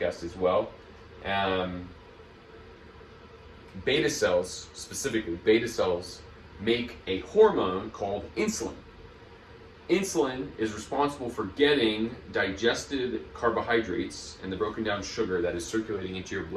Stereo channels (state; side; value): identical; both; correlation 1.00